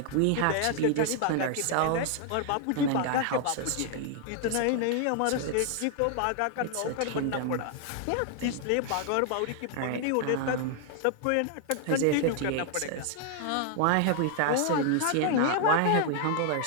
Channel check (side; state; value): both; different; correlation 0.00